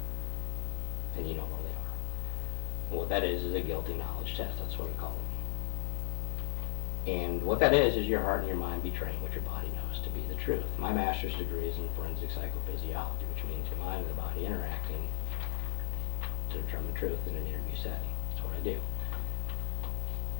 And you know where they are. And what that is a guilty knowledge test. That's what I call it. And what that is your heart and your mind betraying what your body knows to be the truth. My master's degree is in forensic psychophysiology, which means the mind and the body interacting to determine truth in an interview setting. That's what I do.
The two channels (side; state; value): right; silent; digital silence